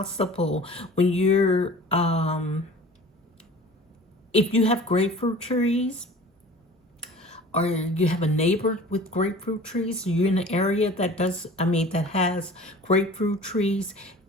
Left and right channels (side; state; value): both; normal; correlation 0.43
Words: when you're if you have grapefruit trees, or you have a neighbor with grapefruit trees, you're in an area that that has grapefruit trees,